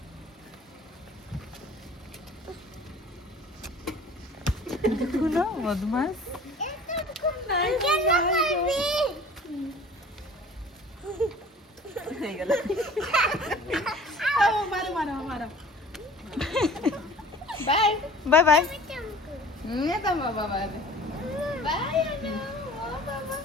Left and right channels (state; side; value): normal; both; correlation 0.47